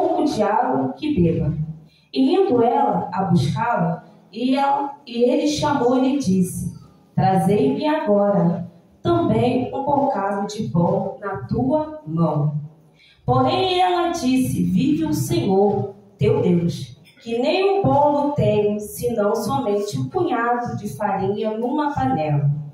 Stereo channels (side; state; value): both; identical; correlation 1.00